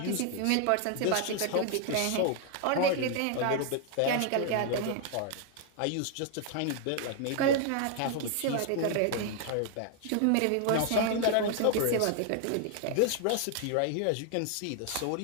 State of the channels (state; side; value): different; both; correlation 0.00